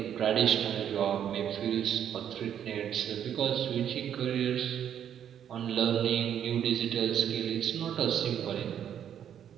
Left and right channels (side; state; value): left; quieter; 9.5 dB